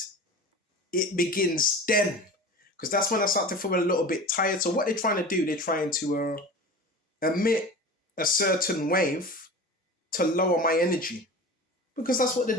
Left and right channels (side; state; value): both; normal; correlation 0.34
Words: it begins then. Because that's when I start to feel a little bit tired. So what they're trying to do, they're trying to emit a certain wave to lower my energy. Because that's what the